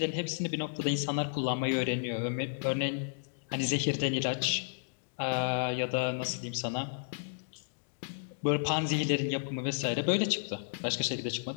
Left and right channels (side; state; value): right; silent; digital silence